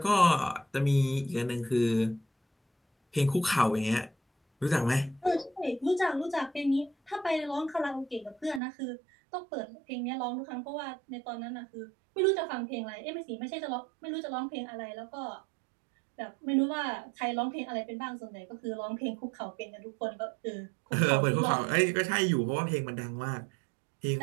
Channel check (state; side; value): drops out; left; at 8.6 s